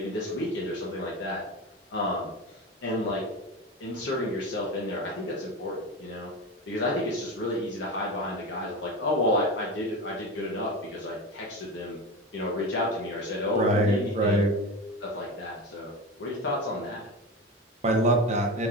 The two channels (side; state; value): both; normal; correlation 0.24